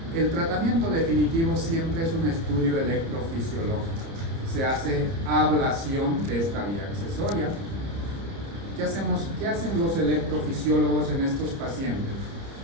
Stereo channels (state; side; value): late; left; 30 ms